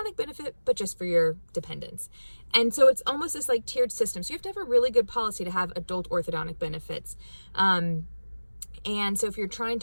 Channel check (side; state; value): both; inverted; correlation -1.00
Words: benefit, but just for your dependents. And so it's almost this like tiered system. So you have to have a really good policy to have adult orthodontic benefits. And so if you're trying